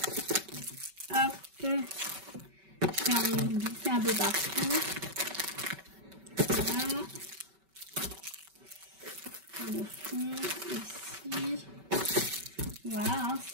Hop. Je fais un glisser un peu partout. Voilà. Le fond, ici. Voilà, hein,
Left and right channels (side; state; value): left; late; 5.2 ms